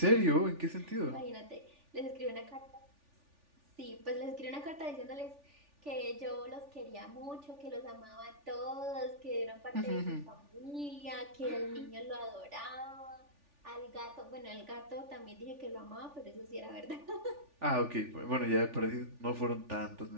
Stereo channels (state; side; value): late; left; 3.4 ms